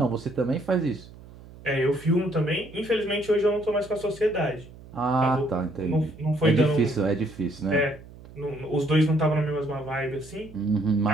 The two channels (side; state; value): right; noise; hum, 19 dB below the sound